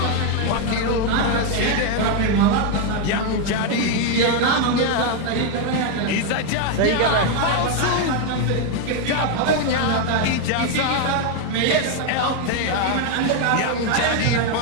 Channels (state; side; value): different; both; correlation 0.01